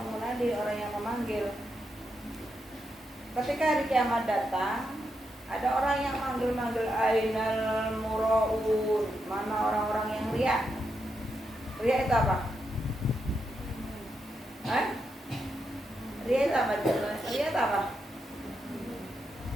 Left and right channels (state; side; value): normal; both; correlation 0.84